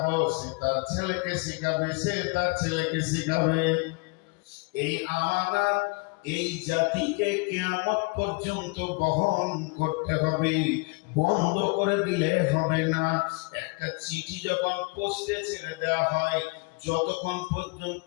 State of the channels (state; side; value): quieter; right; 29.2 dB